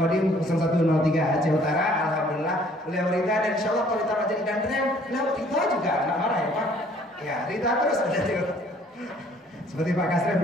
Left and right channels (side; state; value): both; normal; correlation 0.59